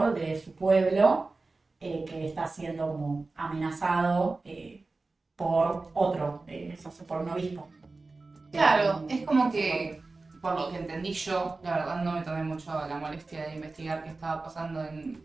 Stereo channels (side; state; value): left; quieter; 3.6 dB